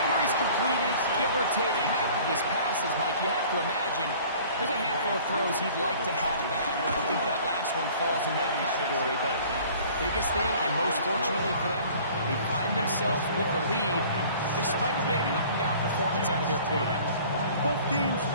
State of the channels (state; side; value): inverted; both; correlation -0.49